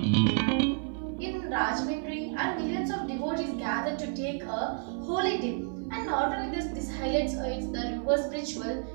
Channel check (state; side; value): silent; left; 58 dB below the other